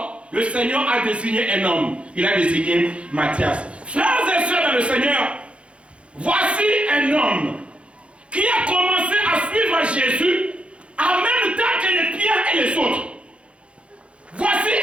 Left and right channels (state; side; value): late; left; 0.060 ms